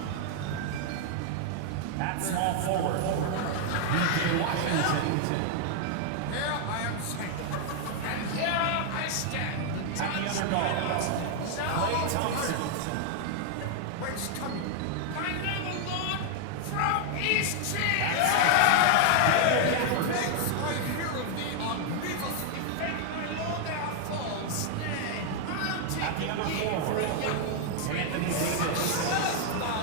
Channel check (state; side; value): different; both; correlation 0.00